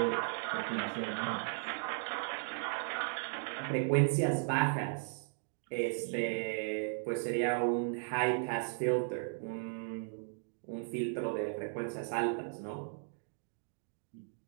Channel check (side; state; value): left; silent; digital silence